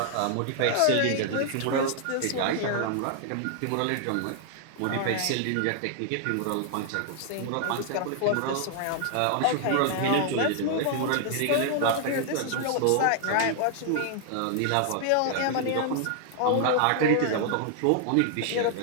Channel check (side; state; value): both; different; correlation 0.00